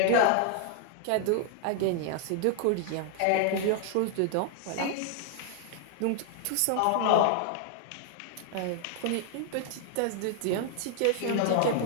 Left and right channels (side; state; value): both; different; correlation 0.00